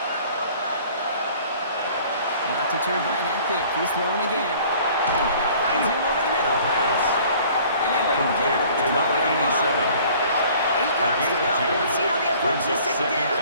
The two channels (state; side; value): inverted; both; correlation -0.52